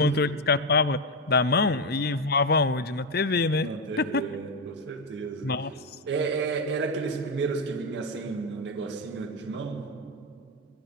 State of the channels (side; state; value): both; normal; correlation 0.08